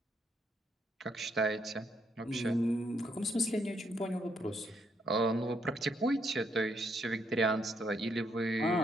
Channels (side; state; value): both; normal; correlation 0.75